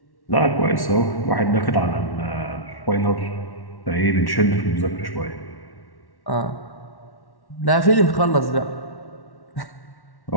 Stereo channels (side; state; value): right; late; 1.1 ms